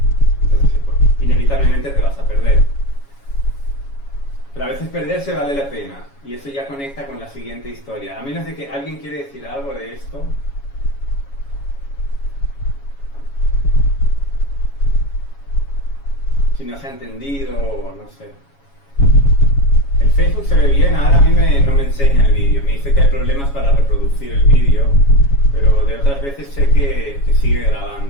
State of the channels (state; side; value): late; right; 7.2 ms